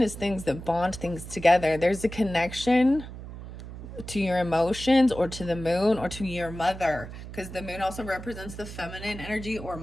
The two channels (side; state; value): right; noise; hum, 12 dB below the sound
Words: is things that bond things together. There's a connection to your emotions or to the moon or to your mother, because the moon also represents the feminine energy or